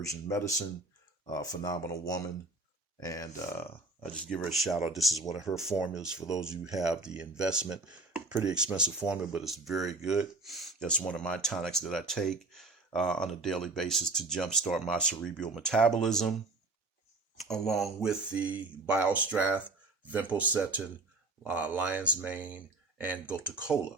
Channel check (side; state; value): left; quieter; 3.3 dB